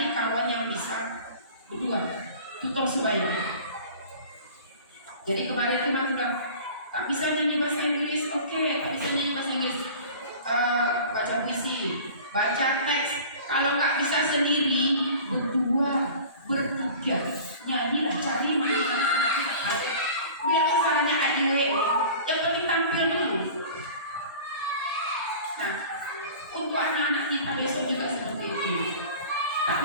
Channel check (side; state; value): both; inverted; correlation -0.42